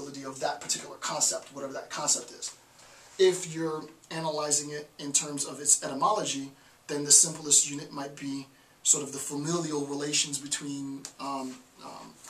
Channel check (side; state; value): both; identical; correlation 1.00